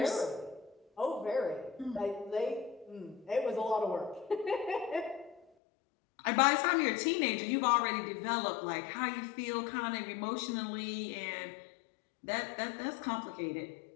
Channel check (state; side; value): drops out; right; at 5.5 s